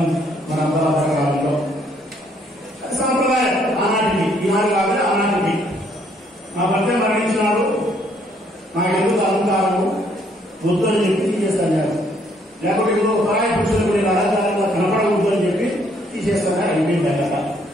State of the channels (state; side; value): normal; both; correlation 0.67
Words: మన కాలంలో సాంప్రదాయం. ఆనాటికి ఈనాడు కాదు, ఆనాటికి. మా భర్త మరణించినాడు, నాకు ఎందుకు అలంకారము వద్దు అని చెప్పి తీసేస్తాను. లేకపోతే ఇంకో పరాయి పురుషులకు నేను అలంకారంగా కనపడవద్దు అని చెప్పి తీసేస్తాను. అయిపోయింది కదా.